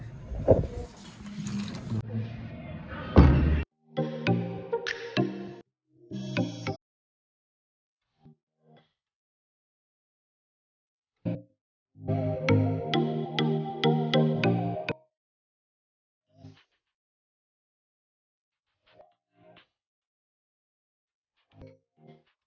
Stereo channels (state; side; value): identical; both; correlation 1.00